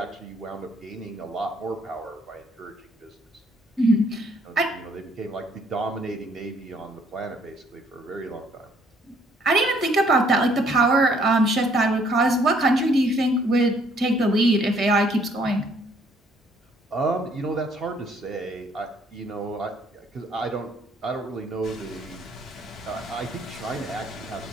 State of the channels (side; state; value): both; normal; correlation 0.64